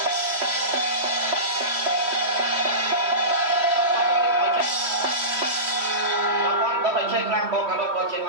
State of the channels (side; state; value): left; late; 3.0 ms